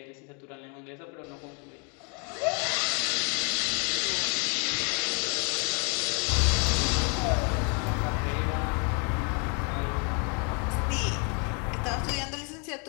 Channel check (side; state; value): right; quieter; 36.0 dB